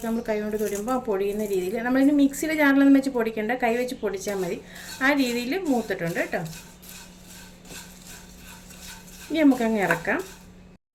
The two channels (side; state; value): both; identical; correlation 1.00